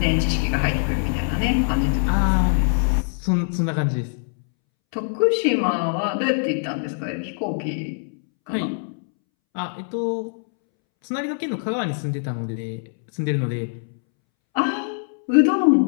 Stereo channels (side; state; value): right; silent; 64 dB below the other